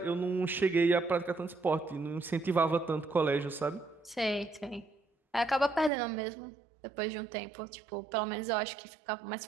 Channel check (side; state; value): left; drops out; at 5.9 s